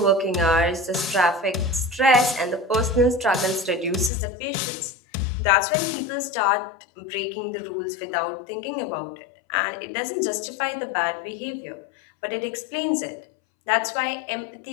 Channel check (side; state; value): right; drops out; at 4.1 s